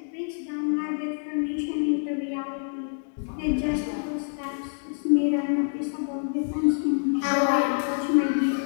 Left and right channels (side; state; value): right; silent; 60 dB below the other